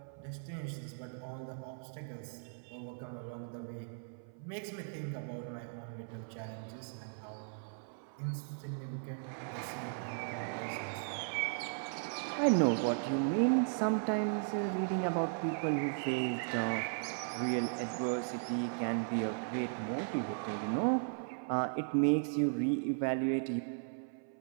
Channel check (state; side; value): silent; left; 53 dB below the other